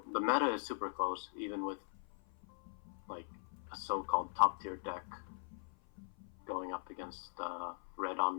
the meta is super close, even with like a so-called top tier deck going up against Red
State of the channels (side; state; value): right; silent; 51 dB below the other